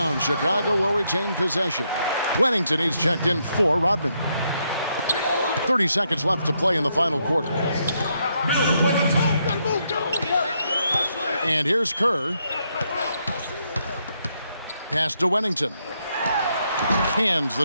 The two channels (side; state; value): both; inverted; correlation -0.77